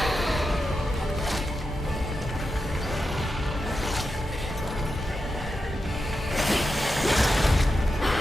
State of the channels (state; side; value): normal; both; correlation 0.89